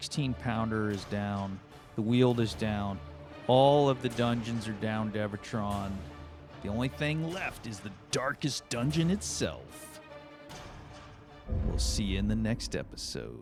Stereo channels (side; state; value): both; identical; correlation 1.00